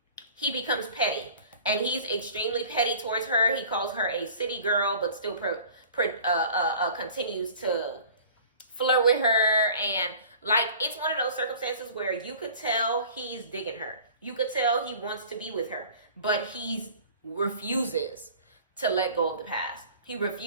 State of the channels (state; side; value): inverted; both; correlation -0.45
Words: he becomes petty. And he's extremely petty towards her. He calls her a city girl, but still continues to flirt with her. And, like, it's one of those circumstances where you could tell he's digging her. You could tell he wants to be with her, but he refuses to let go of the past. He